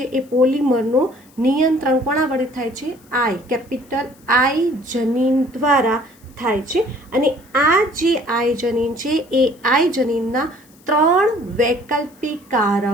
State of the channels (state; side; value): noise; left; hiss, 29 dB below the sound